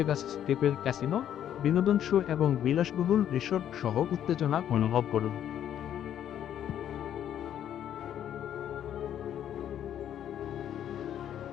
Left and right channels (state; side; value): quieter; right; 10.3 dB